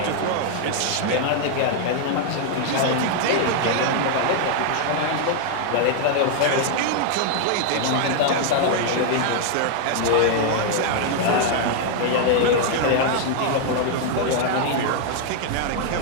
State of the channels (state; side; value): different; both; correlation 0.00